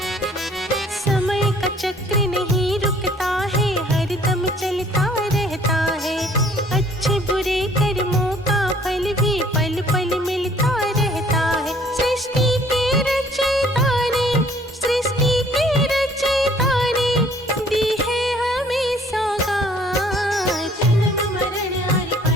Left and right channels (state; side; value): normal; both; correlation 0.58